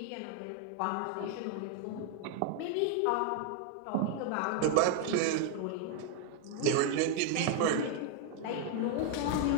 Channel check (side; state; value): both; different; correlation 0.00